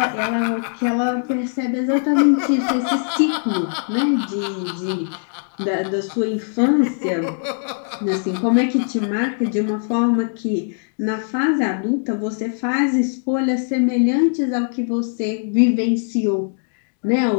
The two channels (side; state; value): right; silent; 63 dB below the other